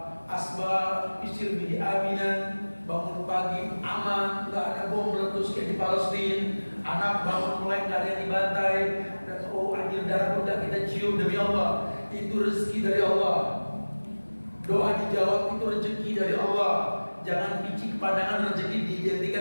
asbab isir bihi aminan, bangun pagi aman, nggak ada bom meletus kayak di Palestina. Anak bangun mulai nggak ada yang dibantai, dan oh anjir darah udah kita cium demi Allah. Itu rezeki dari Allah. Doa dijawab itu rezeki dari Allah. Jangan picik pandangan rezeki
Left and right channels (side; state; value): both; inverted; correlation -1.00